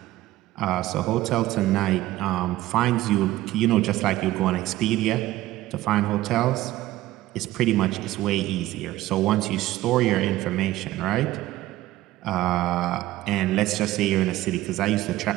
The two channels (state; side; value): quieter; left; 16.0 dB